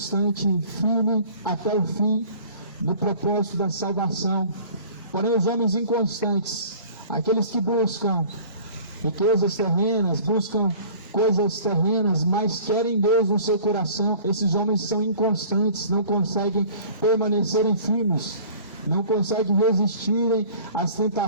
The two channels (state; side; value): inverted; both; correlation -0.47